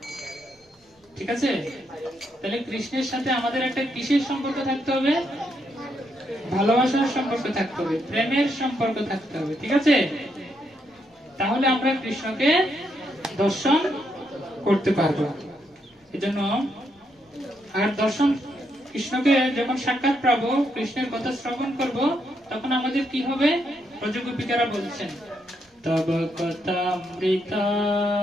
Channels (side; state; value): both; normal; correlation 0.78